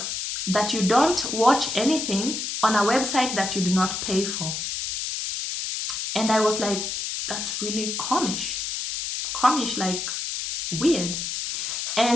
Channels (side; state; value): left; noise; hiss, 3 dB below the sound